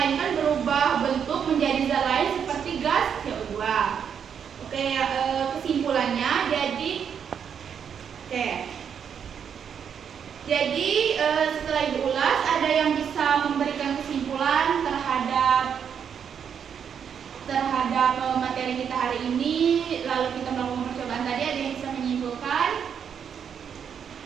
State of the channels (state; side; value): quieter; left; 7.7 dB